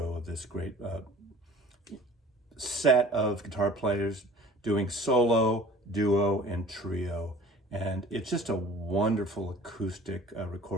of this great set of guitar players doing solo, duo, and trio. And it's just a wonderful acoustic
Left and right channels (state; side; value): normal; both; correlation 0.46